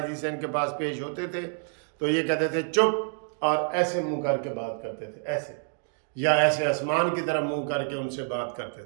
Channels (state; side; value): silent; left; 55 dB below the other